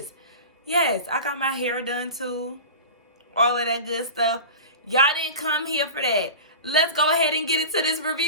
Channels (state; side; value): inverted; both; correlation -0.32